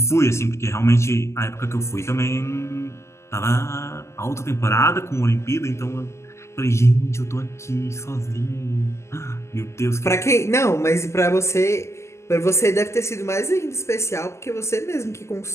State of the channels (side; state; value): right; late; 0.13 ms